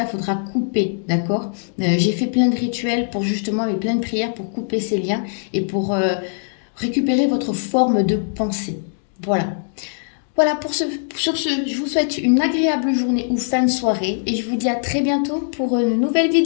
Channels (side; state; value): right; silent; digital silence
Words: il faudra couper. D'accord? J'ai fait plein de rituels pour justement, avec plein de prières pour couper ces liens et pour récupérer votre forme de pensée. Voilà. Voilà, sur ce, je vous souhaite une agréable journée ou fin de soirée et je vous dis à très bientôt pour une nouvelle